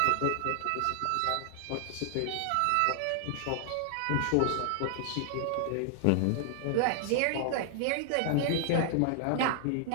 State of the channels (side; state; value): both; different; correlation 0.00